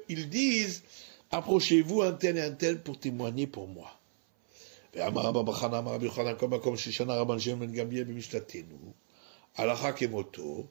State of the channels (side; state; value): left; silent; 56 dB below the other